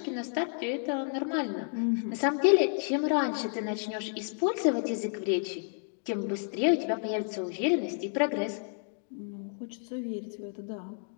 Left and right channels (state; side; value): silent; right; 57 dB below the other